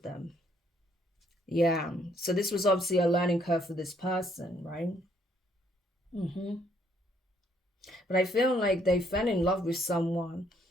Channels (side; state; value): both; normal; correlation 0.68